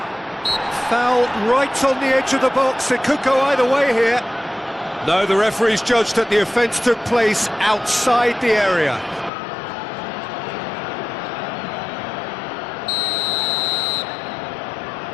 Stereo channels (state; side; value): drops out; right; at 9.3 s